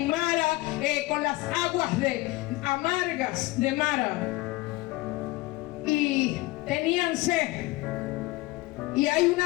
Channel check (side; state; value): right; quieter; 20.3 dB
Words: Mara con las aguas amargas de Mara. Y tenían sed. Y hay